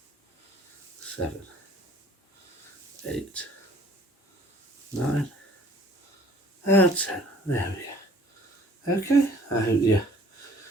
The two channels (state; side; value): normal; both; correlation 0.55